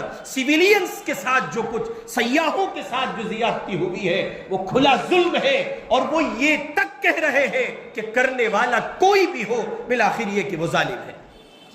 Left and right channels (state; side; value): identical; both; correlation 1.00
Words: سویلینز کے ساتھ جو کچھ، سیاحوں کے ساتھ جو زیادتی ہوئی ہے، وہ کھلا ظلم ہے. اور وہ یہ تک کہہ رہے ہیں کہ کرنے والا کوئی بھی ہو، بالآخر یہ کہ وہ ظالم ہے.